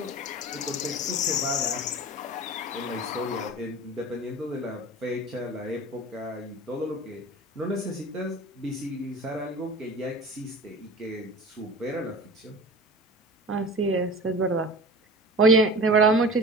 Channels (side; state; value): both; normal; correlation 0.37